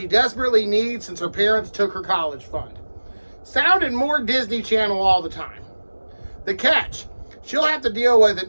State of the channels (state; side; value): inverted; both; correlation -1.00